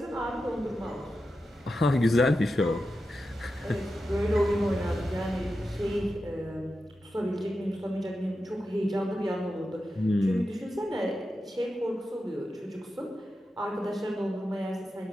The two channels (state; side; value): normal; both; correlation 0.90